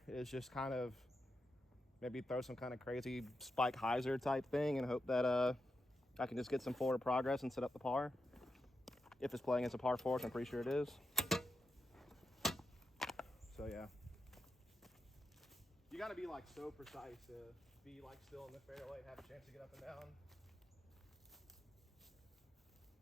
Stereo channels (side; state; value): both; normal; correlation 0.87